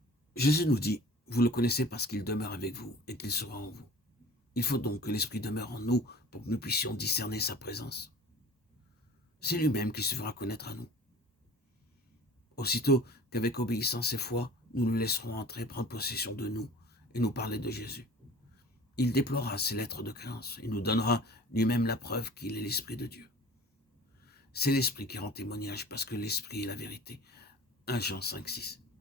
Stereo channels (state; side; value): normal; both; correlation 0.44